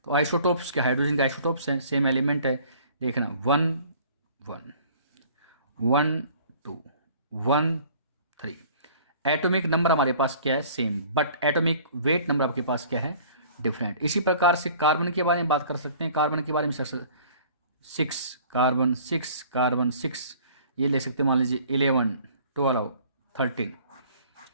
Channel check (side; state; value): both; inverted; correlation -0.51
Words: तो आइसोटोप्स के हाइड्रोजन के आइसोटोप्स हैं, सेम एलिमेंट है, देखना 1 1 1 2 1 3। एटॉमिक नंबर हमारे पास क्या है, same, but atomic weight number आपके पास क्या है, डिफरेंट। इसी प्रकार से कार्बन के बारे में बात कर सकते हैं। कार्बन के बारे में 6 कार्बन 6 ये ले सकते हैं, मान लीजिए 11 12 13।